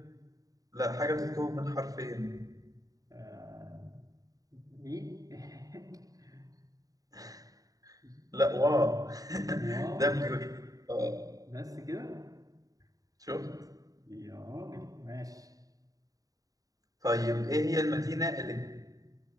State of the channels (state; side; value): late; left; 0.17 ms